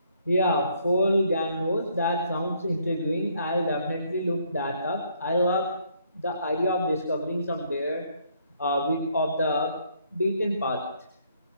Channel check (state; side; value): inverted; both; correlation -0.68